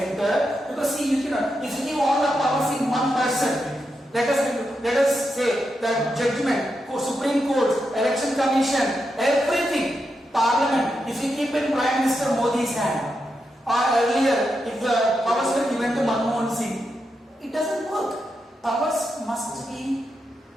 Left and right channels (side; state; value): both; normal; correlation 0.85